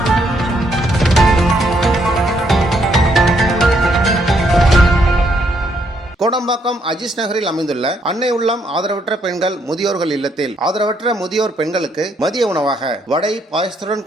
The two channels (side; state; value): both; normal; correlation 0.73